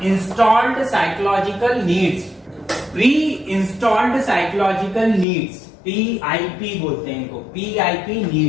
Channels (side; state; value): right; drops out; at 5.2 s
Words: installed psychological needs. Pre installed psychological needs, PIP बोलते हैं इनको, PIP